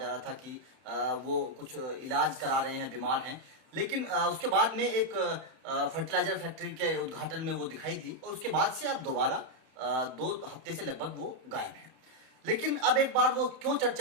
रहा था कि वो कुछ इलाज करा रहे हैं, बीमार हैं। लेकिन उसके बाद में एक फर्टिलाइजर फैक्ट्री के उद्घाटन में वो दिखाई दी और उसके बाद से अब दोबारा 2 हफ्ते से लगभग वो गायब हैं। लेकिन अब एक बार वो क्यों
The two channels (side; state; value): left; late; 31 ms